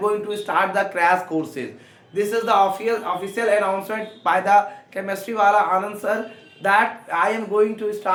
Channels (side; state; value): both; identical; correlation 1.00